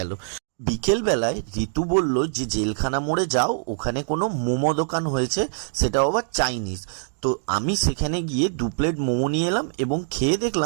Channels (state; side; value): silent; left; digital silence